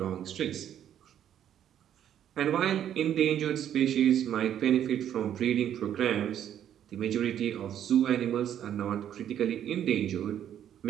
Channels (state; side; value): quieter; left; 10.2 dB